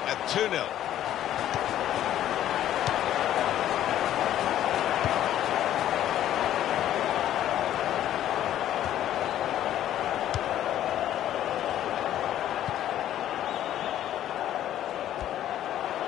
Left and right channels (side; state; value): right; quieter; 11.9 dB